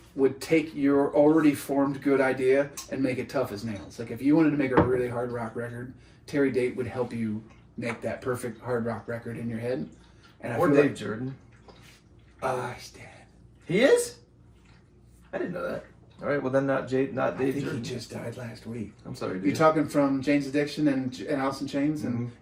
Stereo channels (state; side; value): identical; both; correlation 1.00